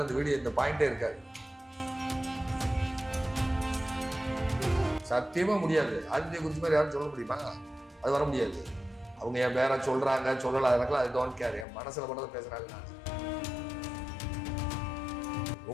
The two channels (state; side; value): drops out; right; at 11.7 s